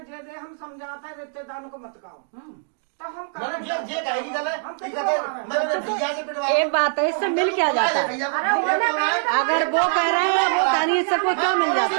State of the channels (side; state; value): left; silent; digital silence